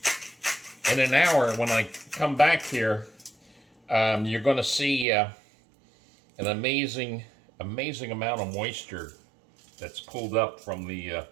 in an hour, when I come back here, you're going to see an amazing amount of moisture that's pulled up from the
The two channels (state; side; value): drops out; left; at 5.1 s